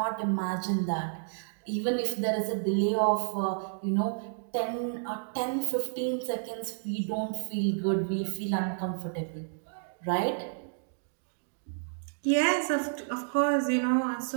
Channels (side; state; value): left; silent; digital silence